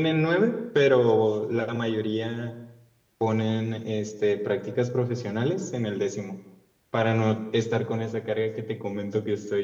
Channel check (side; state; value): both; identical; correlation 1.00